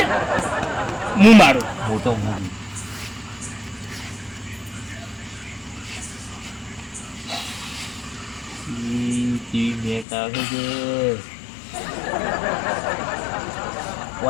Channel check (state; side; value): drops out; right; at 10.1 s